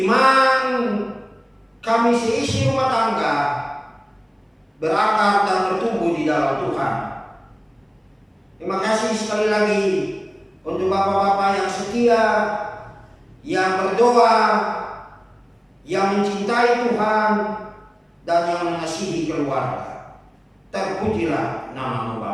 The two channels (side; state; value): both; identical; correlation 1.00